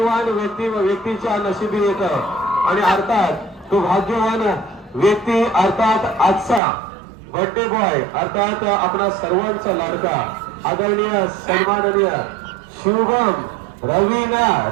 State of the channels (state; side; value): drops out; left; at 6.6 s